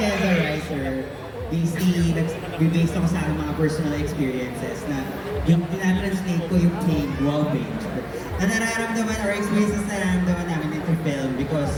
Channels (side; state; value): both; identical; correlation 1.00